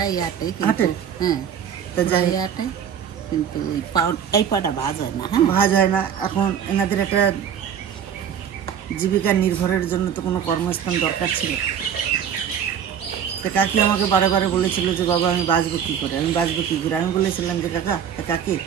আটাই, হাঁটে? হ্যাঁ, তা যাই হোক, আটাই, কিন্তু এই পাটা ভাজ হয় না। হ্যাঁ, ভাজ হয় না। এখন এনাদের একটা জীবিকা নির্ভরের জন্য তো কোনো কর্মস্থান দরকার ছিল। তা কাকি আমাকে বারে বারে বলেছিল যে বাবা আমি বাঁচবো কী করে, আমি বাঁচবো কী করে। আমি বলেছিলাম যে কাকি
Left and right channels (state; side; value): quieter; left; 8.4 dB